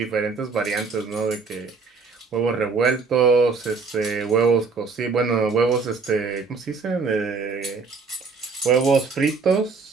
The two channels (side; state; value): left; quieter; 4.7 dB